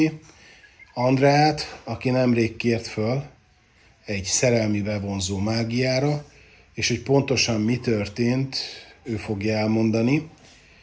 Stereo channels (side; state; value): both; identical; correlation 1.00